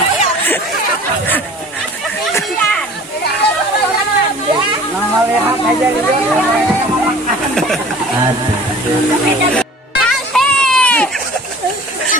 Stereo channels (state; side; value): normal; both; correlation 0.45